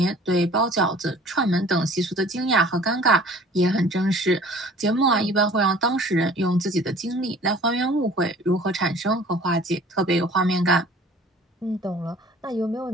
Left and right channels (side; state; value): both; normal; correlation 0.50